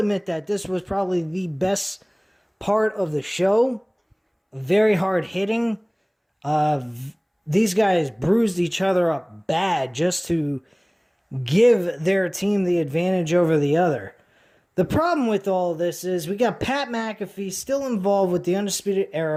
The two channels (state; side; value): identical; both; correlation 1.00